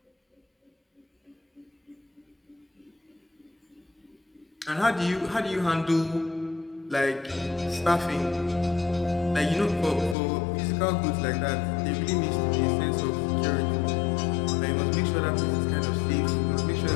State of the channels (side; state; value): right; drops out; at 10.2 s